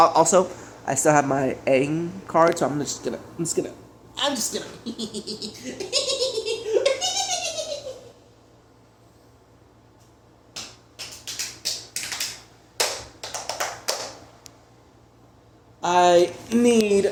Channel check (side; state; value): both; identical; correlation 1.00